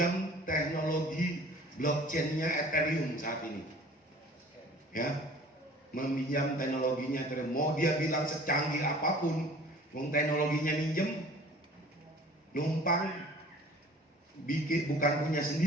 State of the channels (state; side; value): normal; both; correlation 0.48